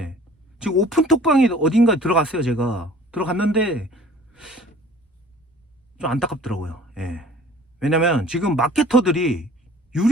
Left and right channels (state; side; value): normal; both; correlation 0.50